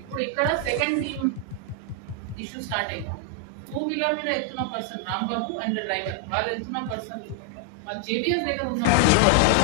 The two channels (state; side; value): different; both; correlation 0.00